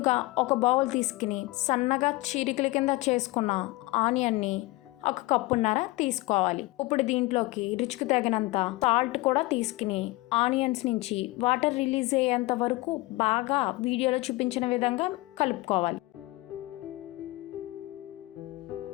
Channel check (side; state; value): right; quieter; 21.0 dB